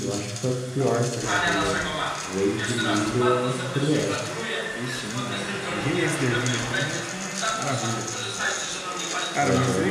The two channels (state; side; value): identical; both; correlation 1.00